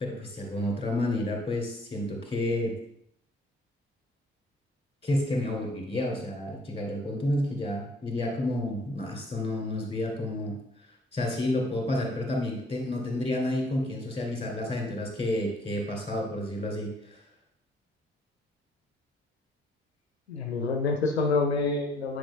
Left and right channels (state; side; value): normal; both; correlation 0.60